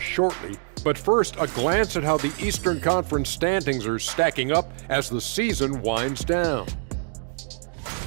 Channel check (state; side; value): silent; left; 62 dB below the other